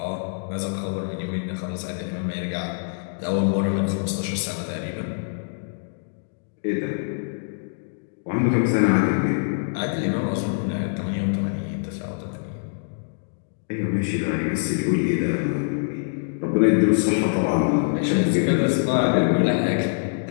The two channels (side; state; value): right; silent; digital silence